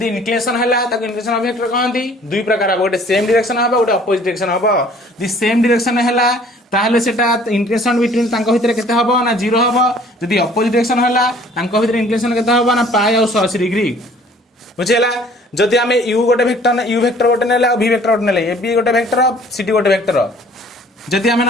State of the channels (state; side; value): normal; both; correlation 0.54